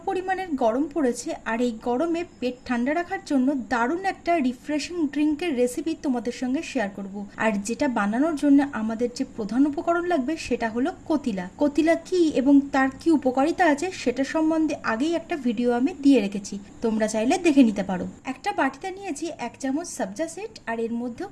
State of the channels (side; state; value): both; identical; correlation 1.00